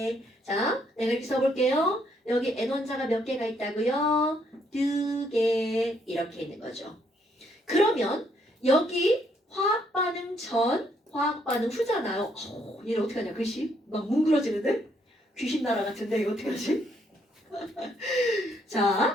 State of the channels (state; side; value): normal; both; correlation 0.71